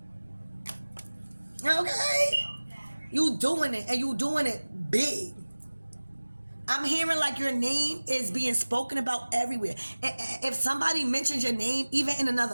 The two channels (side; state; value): both; inverted; correlation -1.00